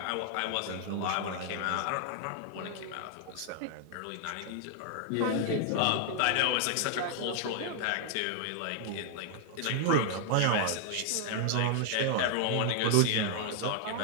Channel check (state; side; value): different; both; correlation 0.00